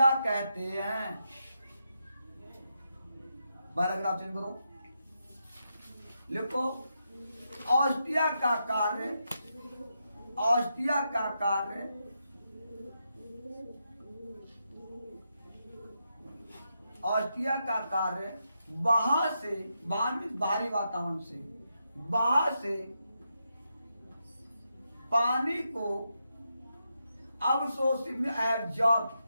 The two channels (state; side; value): inverted; both; correlation -0.84